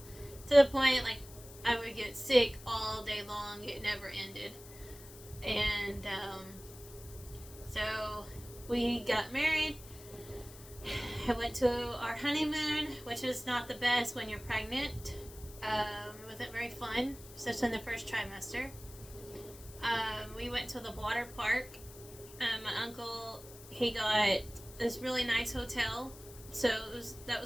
To the point, like, I would get sick all day long. It never ended. And, so we got married. I went to our honeymoon, which is not the best when you're pregnant. It wasn't very fun, especially in the first trimester. We went to the water park. My uncle, he got this really nice hotel. So that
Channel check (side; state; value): left; noise; hiss, 18 dB below the sound